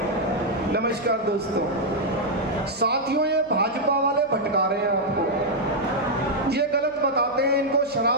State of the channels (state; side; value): noise; left; hum, 26 dB below the sound